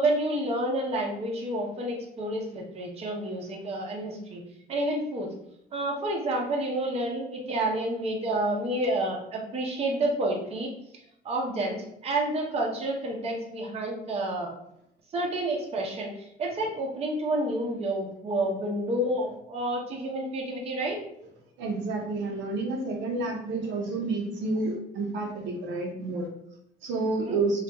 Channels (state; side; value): normal; both; correlation 0.43